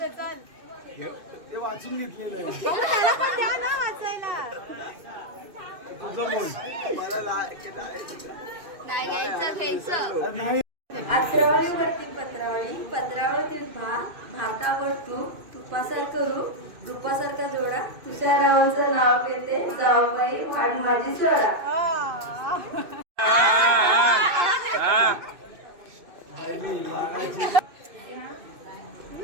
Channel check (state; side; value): late; left; 2.6 ms